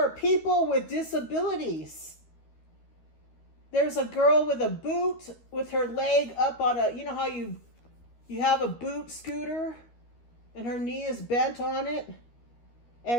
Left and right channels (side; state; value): right; late; 13 ms